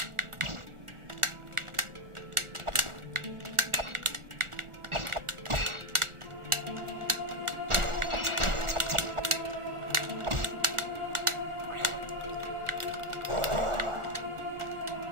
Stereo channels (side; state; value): left; late; 1.4 ms